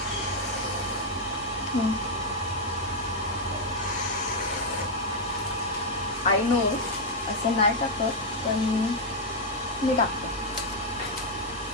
आय नो असं नाही टाकत, पण मी टाकते।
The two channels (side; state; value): both; normal; correlation -0.01